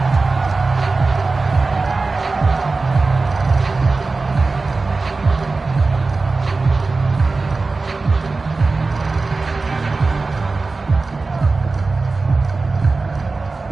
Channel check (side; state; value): left; quieter; 3.8 dB